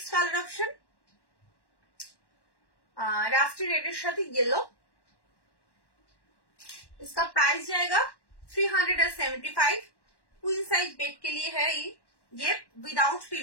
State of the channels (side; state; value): right; late; 1.1 ms